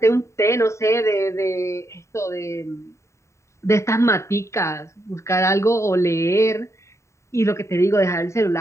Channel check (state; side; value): late; right; 0.14 ms